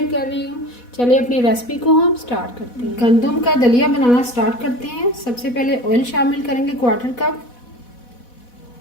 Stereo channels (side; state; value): right; late; 4.1 ms